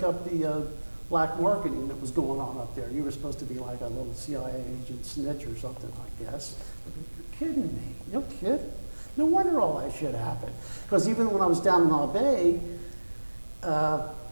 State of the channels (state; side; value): inverted; both; correlation -1.00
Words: up the black marketing that was going on up there. You were supposed to be like a little CIA agent snitch or something, I guess. I go, you're kidding me. No kidding. No wonder all that shit happened. Because even when I was down in Naval,